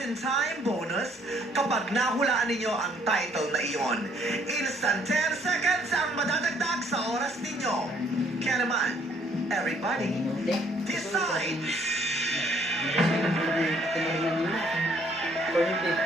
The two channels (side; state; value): both; normal; correlation 0.64